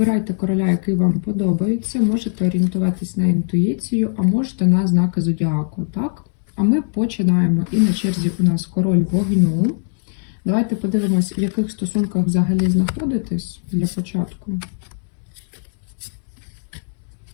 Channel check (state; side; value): silent; right; digital silence